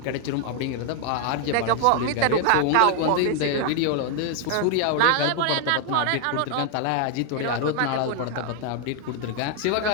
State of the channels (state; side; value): different; both; correlation 0.00